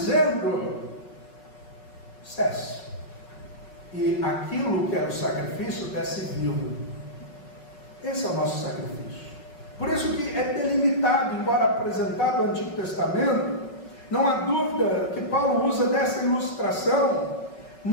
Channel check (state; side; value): late; right; 5.4 ms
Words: cesse. E aquilo que era o sacrifício desce vivo. Esse é o nosso sacrifício. Por isso que é delimitado, embora apresentado no Antigo Testamento, não há dúvida que Paulo usa dessa ilustração,